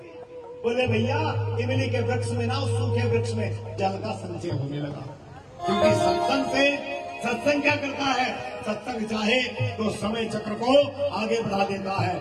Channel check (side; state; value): both; identical; correlation 1.00